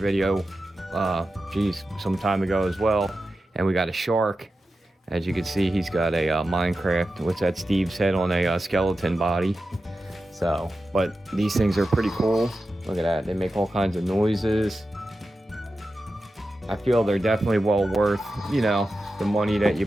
some time ago as well, and we got a shark. As you can see, he's got a Minecraft. What's that? Steve's head on a skeleton body. So, but these things are pretty cool. Look at that. They make all kinds of noises. I feel they're definitely well worth, the money that you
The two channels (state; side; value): normal; both; correlation 0.92